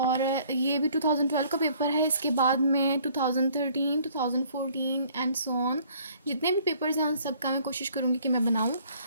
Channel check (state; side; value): inverted; both; correlation -0.58